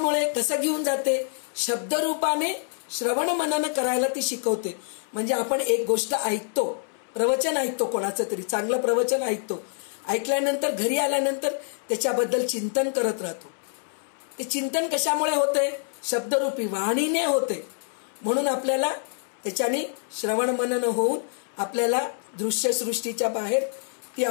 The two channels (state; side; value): silent; right; 61 dB below the other